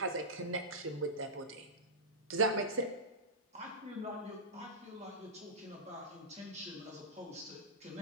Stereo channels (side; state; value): both; normal; correlation -0.13